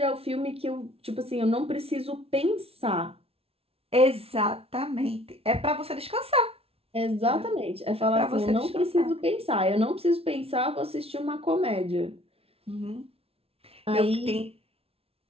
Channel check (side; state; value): left; late; 0.28 ms